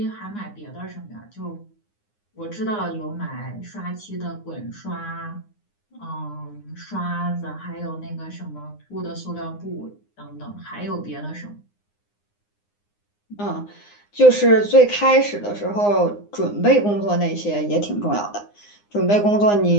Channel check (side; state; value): right; late; 9.7 ms